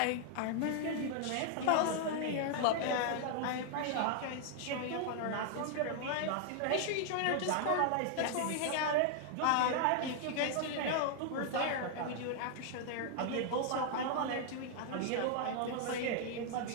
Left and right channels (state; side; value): different; both; correlation 0.00